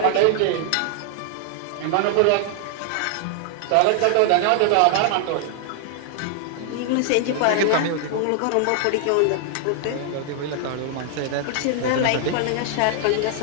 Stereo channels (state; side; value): different; both; correlation 0.00